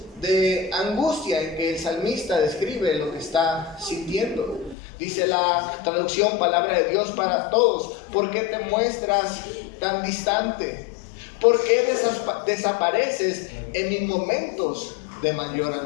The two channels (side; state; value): right; drops out; at 4.8 s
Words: de angustia en que el salmista describe lo que está sintiendo. Dice la traducción Palabra de Dios para Todos: ¿por qué te muestras tan distante? ¿Por qué desapareces en mis momentos de mayor